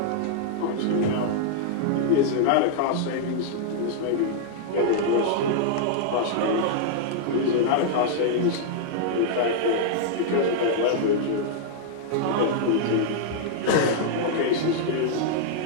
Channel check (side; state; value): both; different; correlation -0.01